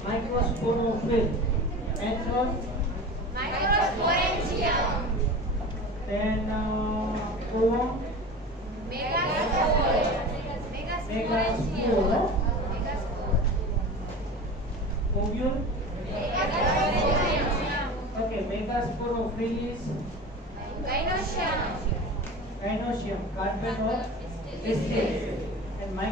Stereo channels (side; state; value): both; normal; correlation 0.34